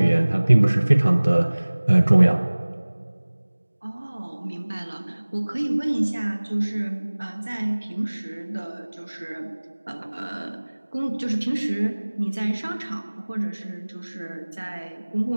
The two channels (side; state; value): both; inverted; correlation -1.00